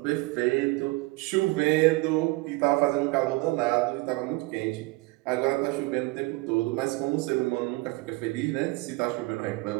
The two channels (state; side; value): quieter; left; 23.5 dB